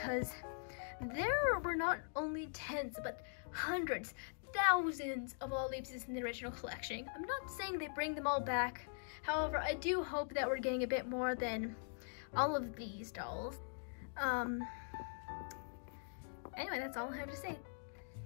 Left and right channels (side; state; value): right; silent; digital silence